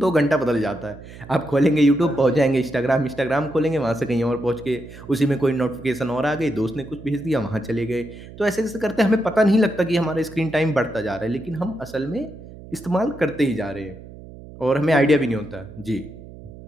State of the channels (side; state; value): right; noise; hum, 17 dB below the sound